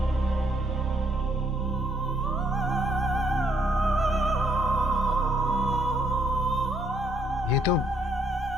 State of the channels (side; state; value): both; normal; correlation 0.70